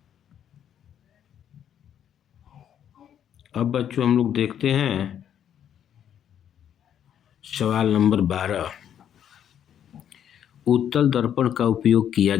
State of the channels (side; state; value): right; quieter; 9.6 dB